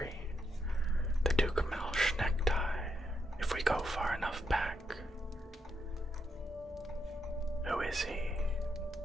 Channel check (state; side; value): normal; both; correlation 0.80